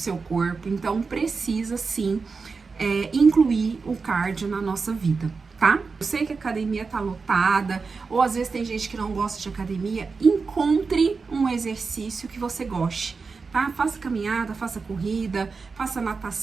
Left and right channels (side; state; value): left; quieter; 4.7 dB